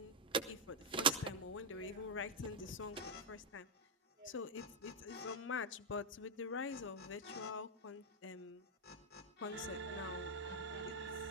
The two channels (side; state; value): both; normal; correlation -0.01